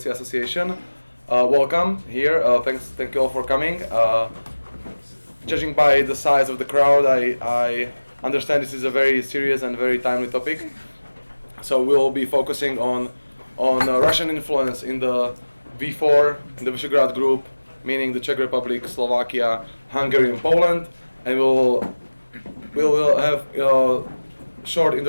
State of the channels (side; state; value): both; inverted; correlation -1.00